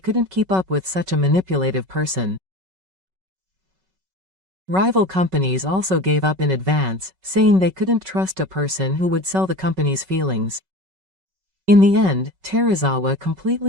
keep up with such a manipulative person. Rival companies also gave up in advance, saying they couldn't trust a person who would sell the company's feelings. In the end, Terazawa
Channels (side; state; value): left; late; 5.3 ms